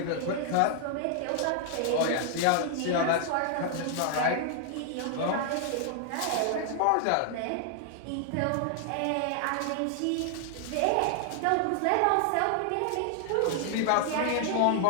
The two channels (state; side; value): different; both; correlation 0.00